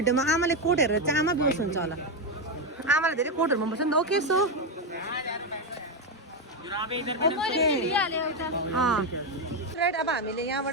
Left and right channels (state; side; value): normal; both; correlation 0.07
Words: आमाले कोट हेरेर चाहिँ आमा बेहोस हुन्छ होला आमालाई धेरै कोटहरू मन पर्छ नि त ओके सो राइट अब हामीले